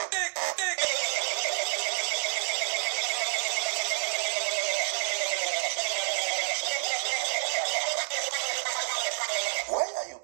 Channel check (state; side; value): silent; left; digital silence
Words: Why are you